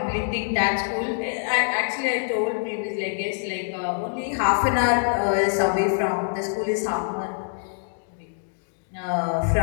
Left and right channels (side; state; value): right; silent; digital silence